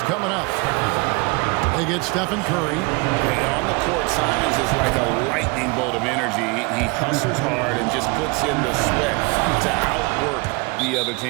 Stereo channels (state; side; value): quieter; left; 27.6 dB